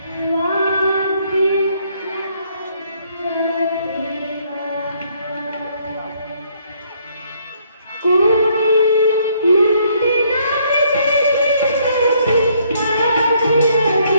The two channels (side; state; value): both; inverted; correlation -0.68